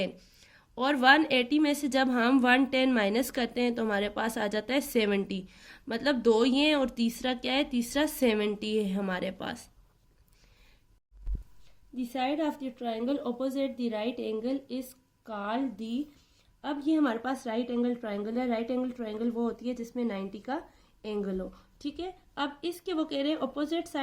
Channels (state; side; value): identical; both; correlation 1.00